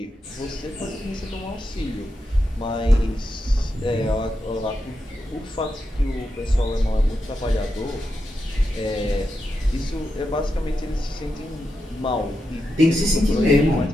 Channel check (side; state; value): both; normal; correlation 0.87